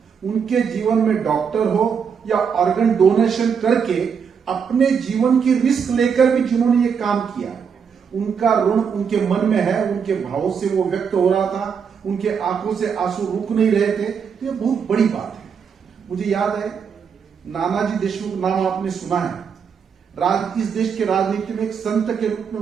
उनके जीवन में डॉक्टर हो या ऑर्गन डोनेशन करके अपने जीवन की रिस्क लेकर भी जिन्होंने ये काम किया, उनका ऋण उनके मन में है, उनके भावों से वो व्यक्त हो रहा था, उनके आंखों से आंसू रुक नहीं रहे थे। तो ये बहुत बड़ी बात है। मुझे याद है नानाजी देशमुख नाम आपने सुना है। इस देश के राजनीति में एक संत के रूप में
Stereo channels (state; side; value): quieter; left; 6.7 dB